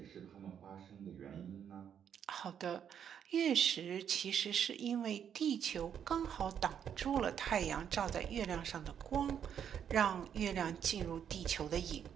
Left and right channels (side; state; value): left; quieter; 8.6 dB